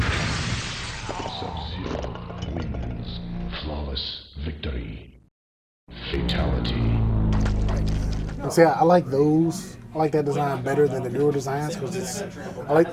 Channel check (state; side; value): identical; both; correlation 1.00